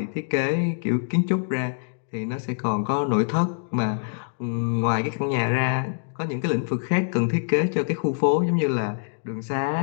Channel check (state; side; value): silent; right; digital silence